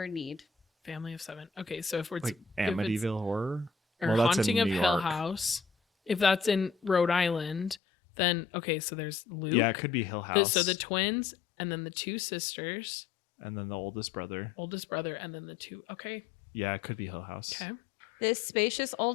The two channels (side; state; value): right; drops out; at 7.8 s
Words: need. Family of 7. Okay, so if it's Like if it's- Amityville Horror? or Well, that's in Haunting of New Hill York. House, if that's in Rhode Island, then okay, so there's Luke. Yeah, it could be Hill House. So the twins and then the 2 sisters, and then the oldest brother. oldest brother, and then the 2. Okay. Yeah, it could be Hill House. Okay. This spacious